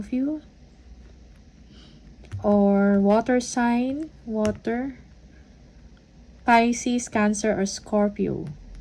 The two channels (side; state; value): both; identical; correlation 1.00